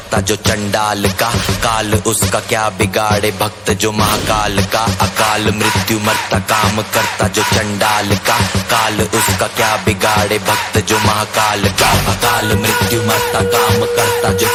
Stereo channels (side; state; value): both; identical; correlation 1.00